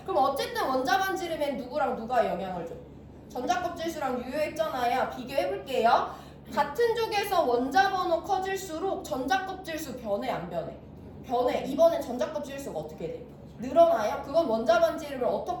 그럼 어쨌든 원자 반지름엔 누구랑 누가 영향을 줘? 전자 껍질수랑 유효액 전화야. 비교해 볼게요. 같은 족에서 원자 번호 커질수록 전자 껍질수 변해 안 변해? 변해. 이번엔 전자 껍질수가 어떻게 돼? 늘어나요? 그건 원자 반지름을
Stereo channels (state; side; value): identical; both; correlation 1.00